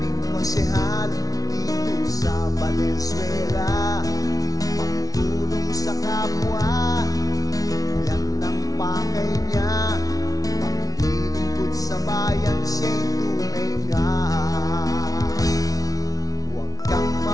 konsehal dito sa Valenzuela. Pagtulong sa kapwa, yan ang pakay niya. Paglilingkod sa bayan, siya'y tunay nga. Huwag kang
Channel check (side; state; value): right; late; 0.18 ms